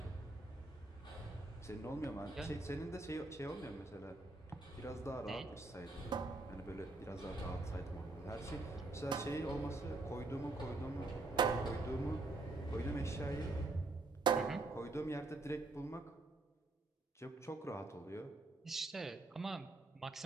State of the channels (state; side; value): quieter; left; 3.1 dB